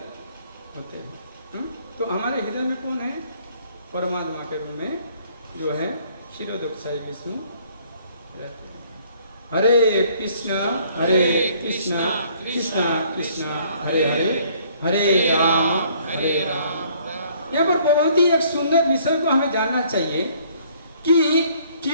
होते हैं। तो हमारे हृदय में कौन है? परमात्मा के रूप में जो है क्षीरोदक्षाई विष्णु रहते हैं। हरे कृष्णा कृष्णा कृष्णा हरे हरे, हरे राम। यहाँ पर बहुत ही एक सुंदर विषय को हमें जानना चाहिए कि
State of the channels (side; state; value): both; inverted; correlation -0.61